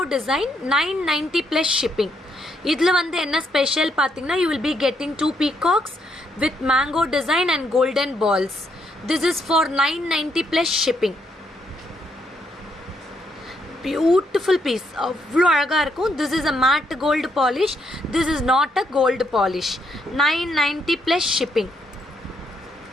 design. 990 plus shipping. இதில் வந்து என்ன special பார்த்தீங்கன்னா, you will be getting 2 peacocks with mango design and golden balls. This is for 990 plus shipping. Beautiful piece. அவ்வளோ அழகாக இருக்கும். This is a matte gold polish. This is not a gold polish. 990 plus shipping.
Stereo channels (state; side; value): normal; both; correlation 0.75